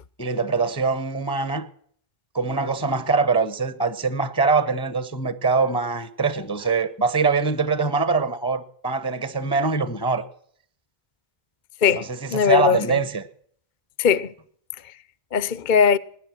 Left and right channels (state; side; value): late; right; 2.2 ms